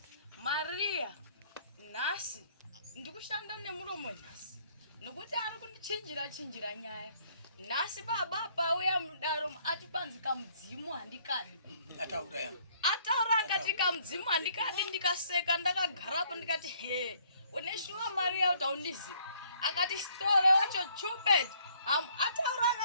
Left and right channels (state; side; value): inverted; both; correlation -0.63